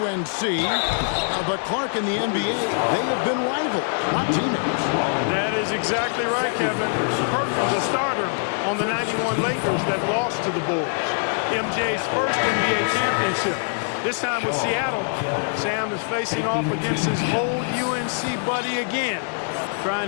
But Clark in the NBA, they have been rivals, not teammates. That is exactly right, Kevin. Perkins, a starter on the 91 Lakers that lost to the Bulls. MJ's first NBA championship. This time with Seattle, Sam is facing off against his old UNC buddy again, trying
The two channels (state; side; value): silent; right; digital silence